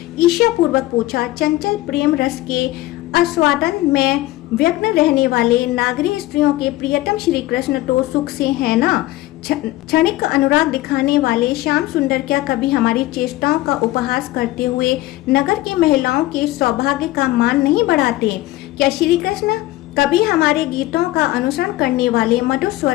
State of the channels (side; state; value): right; quieter; 17.2 dB